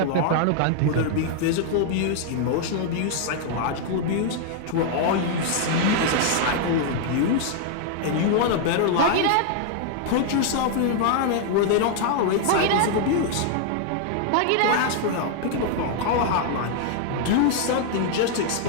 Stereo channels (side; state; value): both; different; correlation 0.00